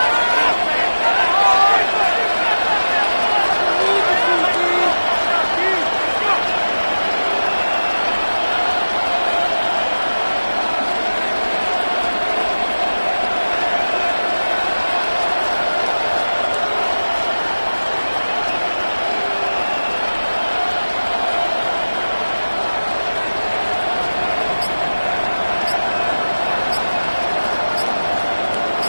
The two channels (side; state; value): both; inverted; correlation -1.00